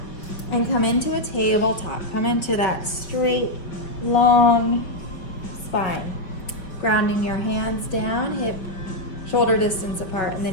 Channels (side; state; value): right; late; 5.5 ms